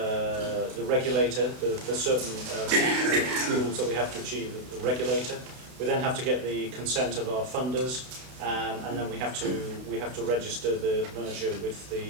regulator. There's certain rules that we have to achieve with the regulator. We then have to get the consent of our funders, and then we have to register the merger with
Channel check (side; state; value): left; late; 32 ms